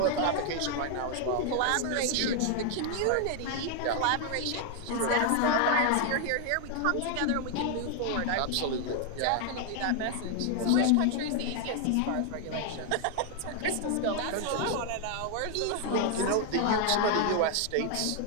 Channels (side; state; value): both; different; correlation 0.00